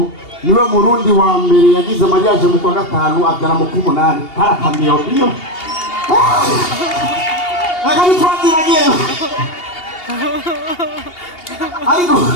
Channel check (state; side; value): late; right; 2.8 ms